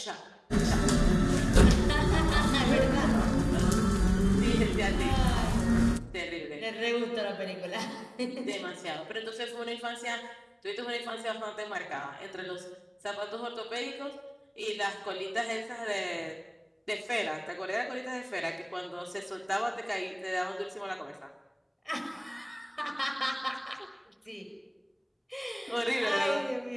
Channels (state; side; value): identical; both; correlation 1.00